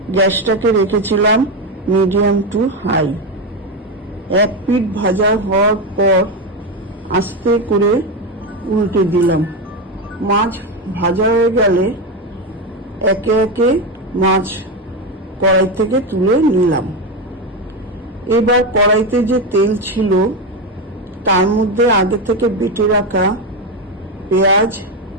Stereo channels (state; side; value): normal; both; correlation 0.12